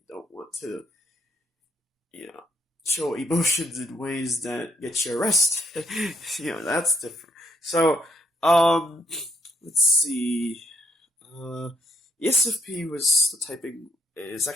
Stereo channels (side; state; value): both; normal; correlation 0.72